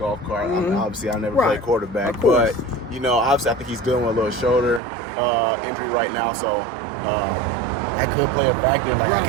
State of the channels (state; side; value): drops out; left; at 4.8 s